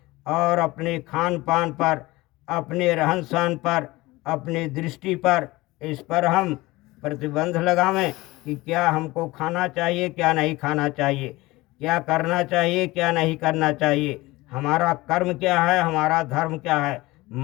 और अपने खान पान पर, अपने रहन सहन पर, अपनी दृष्टि पर, इस पर हम प्रतिबंध लगावें कि क्या हमको खाना चाहिए, क्या नहीं खाना चाहिए, क्या करना चाहिए, क्या नहीं करना चाहिए, हमारा कर्म क्या है, हमारा धर्म क्या है।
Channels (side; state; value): right; quieter; 20.4 dB